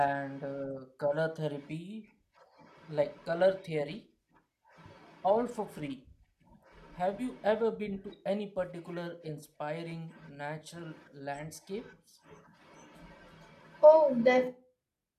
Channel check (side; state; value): both; identical; correlation 1.00